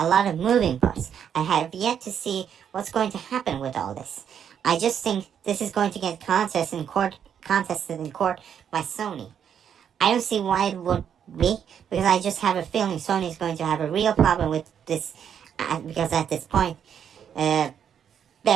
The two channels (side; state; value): left; quieter; 8.4 dB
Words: lot of moving parts. I have yet to see what's going to happen with all this. I just think this is going to get contested in court contested in court by Sony. I don't see why it would be, because I just have a feeling Sony is going to have a real problem with this, because at this point,